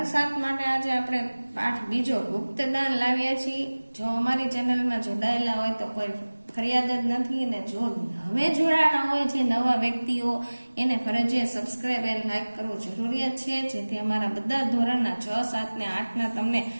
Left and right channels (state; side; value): inverted; both; correlation -1.00